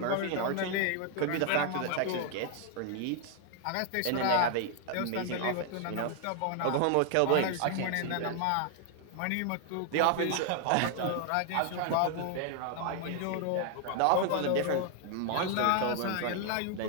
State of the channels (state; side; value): different; both; correlation 0.00